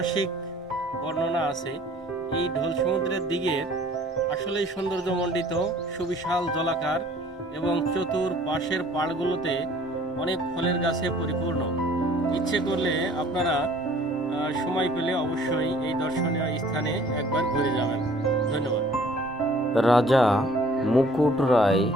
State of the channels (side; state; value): both; normal; correlation 0.54